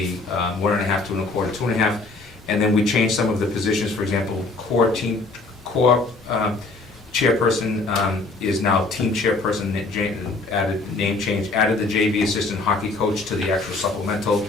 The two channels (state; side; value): quieter; right; 3.4 dB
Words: 1.5 to 1.25 to 2.5. And then we changed some of the positions. For example, core chairperson is now team chairperson, added name change, added the JV assistant hockey coach to the actual supplemental,